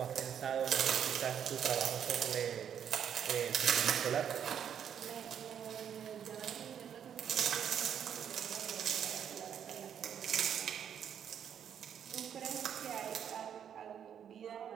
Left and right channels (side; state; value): left; quieter; 8.7 dB